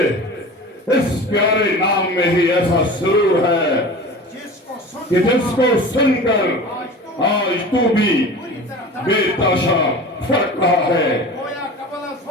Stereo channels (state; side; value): normal; both; correlation 0.36